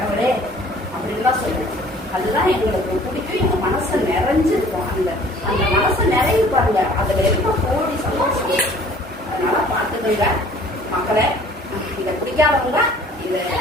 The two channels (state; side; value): normal; both; correlation 0.52